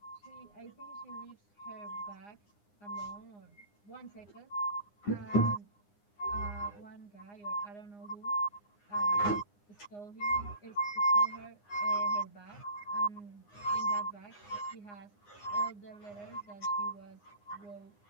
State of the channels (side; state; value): right; late; 9.7 ms